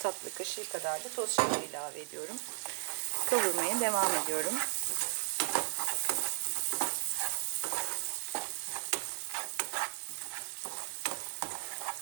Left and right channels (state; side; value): silent; left; digital silence